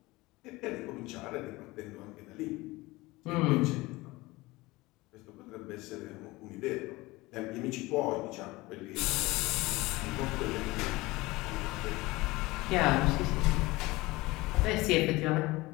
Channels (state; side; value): quieter; right; 21.0 dB